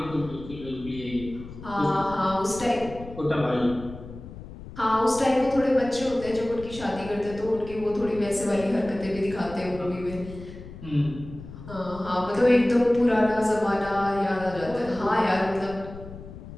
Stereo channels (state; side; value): noise; left; rumble, 14 dB below the sound